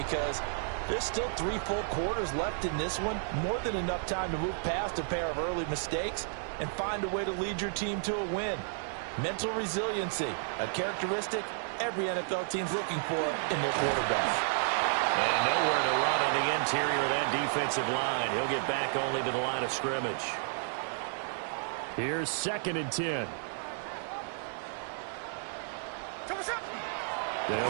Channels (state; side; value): silent; left; 56 dB below the other